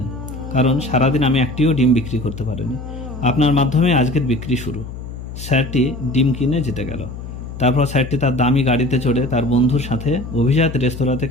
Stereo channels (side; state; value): left; noise; hum, 10 dB below the sound